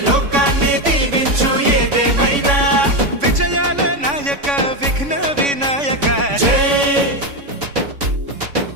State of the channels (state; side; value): late; left; 3.5 ms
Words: లోకాన్ని దీవించు ఏదేమైనా విజయాల నాయక విఘ్న వినాయక